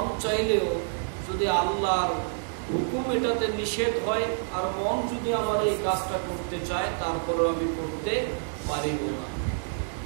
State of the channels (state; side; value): silent; left; digital silence